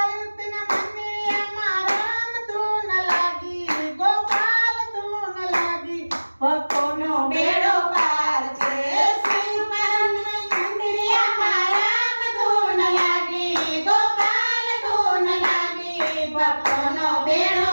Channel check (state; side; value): inverted; both; correlation -1.00